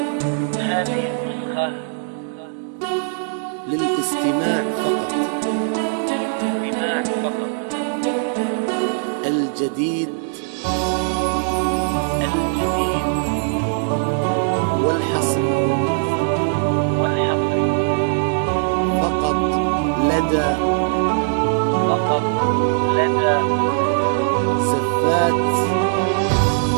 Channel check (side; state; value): left; silent; digital silence